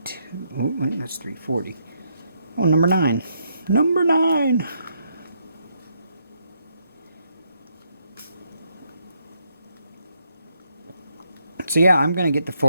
Oh, right, that's 340. Oh, number 9. Number 9. So yeah, I'm gonna get the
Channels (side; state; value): both; inverted; correlation -0.76